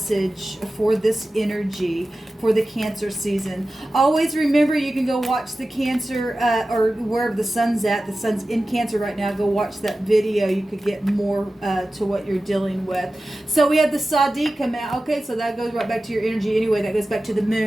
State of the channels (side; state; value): both; normal; correlation 0.95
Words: for this energy for the Cancer season? Always remember, you can go watch the Cancer or wherever the sun's at. The sun's in Cancer right now. Go watch that video. You could get more to what you're dealing with. So we had the ShAhH come out. Okay, so that goes right back to your energy anyway. That goes back to the